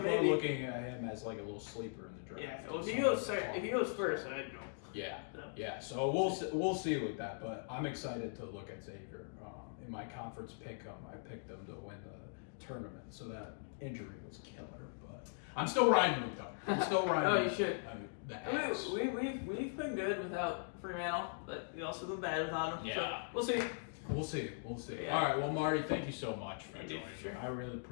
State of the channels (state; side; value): silent; right; digital silence